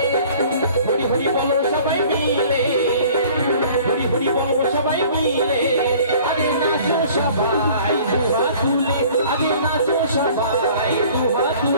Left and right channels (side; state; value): both; inverted; correlation -0.50